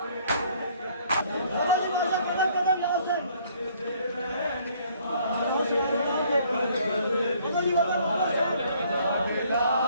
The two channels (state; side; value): inverted; both; correlation -0.61